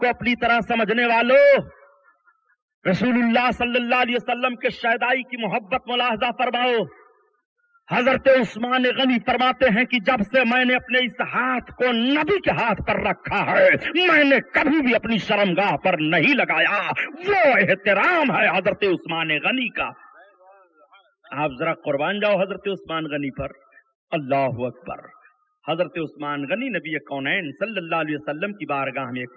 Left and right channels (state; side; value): identical; both; correlation 1.00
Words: اپنی طرح سمجھنے والوں، رسول اللہ صلی اللہ علیہ وسلم کے شہدائی کی محبت ملاحظہ فرماؤ۔ حضرت عثمان غنی فرماتے ہیں کہ جب سے میں نے اپنے اس ہاتھ کو نبی کے ہاتھ پر رکھا ہے، میں نے کبھی بھی اپنی شرمگاہ پر نہیں لگایا۔ وہ احترام ہے حضرت عثمان غنی کا۔ आप जरा कुर्बान जाओ हजरत उस्मान गनी पर। अल्लाह अकबर। हजरत उस्मान गनी नबी कौनैन सल्लल्लाहु अलैहि वसल्लम की बारगाह में